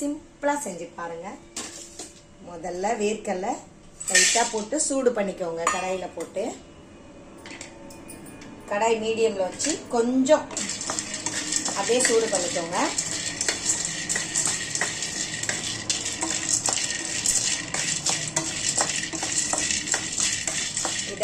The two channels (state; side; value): identical; both; correlation 1.00